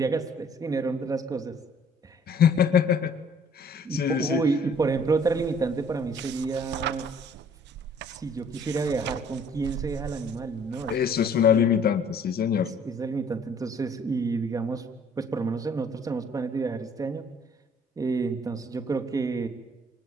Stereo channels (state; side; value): normal; both; correlation 0.57